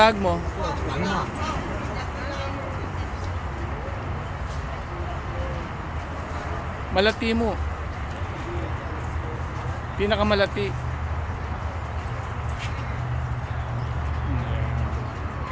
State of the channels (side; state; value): both; identical; correlation 1.00